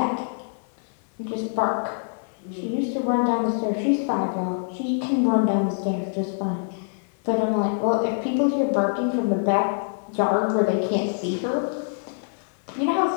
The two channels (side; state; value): right; silent; 58 dB below the other